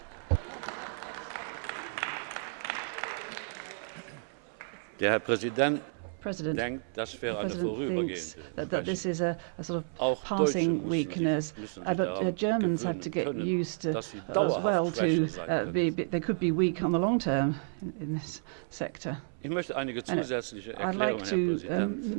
Der Herr Präsident President, denkt, das wäre the eine President thinks vorübergehende that this is a sort Auch of passing Deutsche weakness, müssen sich but daran Germans have to gewöhnen get können, used to dass sie as dauerhaft well schwächer to sein können. they could be weak on the long term in this sector. Ich möchte einige And zusätzliche I'd like Erklärungen, to Herr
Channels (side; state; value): left; silent; 57 dB below the other